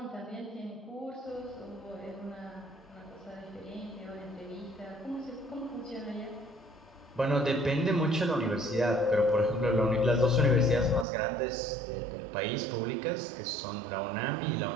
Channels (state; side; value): drops out; left; at 11.1 s